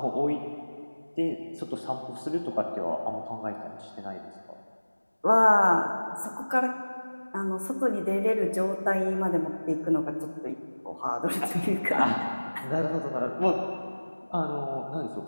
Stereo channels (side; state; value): both; inverted; correlation -1.00